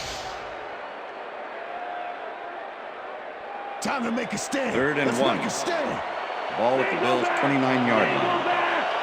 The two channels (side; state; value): both; identical; correlation 1.00